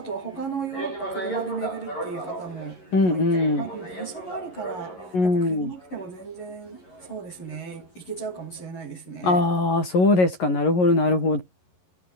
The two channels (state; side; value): late; right; 11 ms